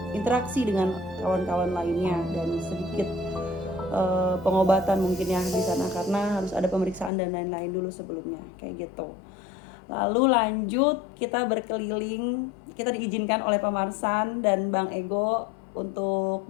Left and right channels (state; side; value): drops out; right; at 7.1 s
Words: interaksi dengan kawan-kawan lainnya, dan sedikit pengobatan mungkin ya di sana, karena harus ada pemeriksaan dan lain-lain dulu sebelumnya, kayak gitu. Lalu lanjut kita berkeliling, kita diizinkan oleh Pak Marsan dan Bang Ego untuk